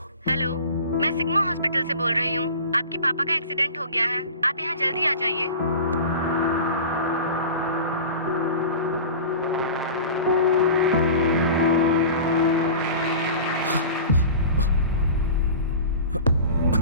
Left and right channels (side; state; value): both; inverted; correlation -0.36